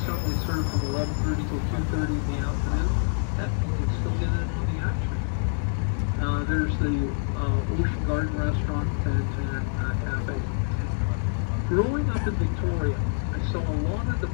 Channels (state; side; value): silent; right; digital silence